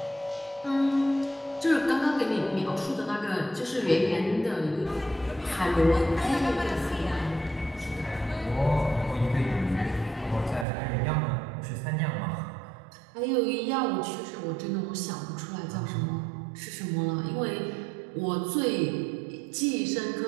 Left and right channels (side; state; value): left; drops out; at 10.7 s